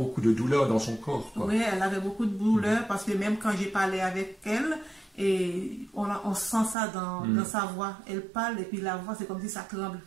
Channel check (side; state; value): left; drops out; at 6.8 s